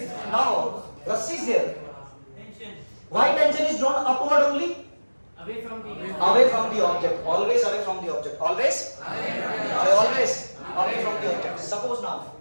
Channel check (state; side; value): inverted; both; correlation -1.00